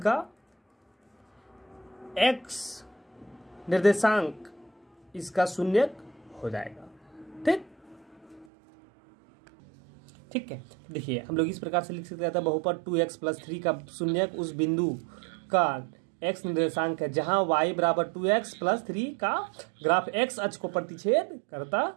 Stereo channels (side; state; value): left; drops out; at 8.5 s